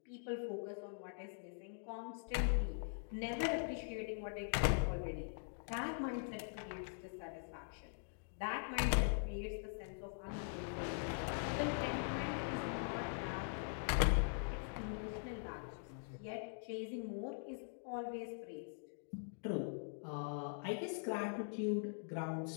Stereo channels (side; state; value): right; silent; digital silence